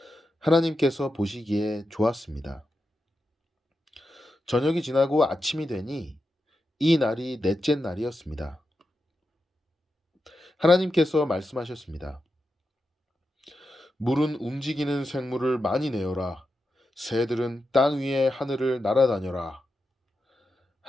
하나님께서 보시기에 좋았습니다. 저녁이 지나고 아침이 되니 이 날이 넷째 날이었습니다. 하나님께서 말씀하셨습니다. 물은 움직이는 생물을 많이 내어라. 새들은 땅 위의 하늘을 날아다녀라.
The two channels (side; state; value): both; normal; correlation 0.89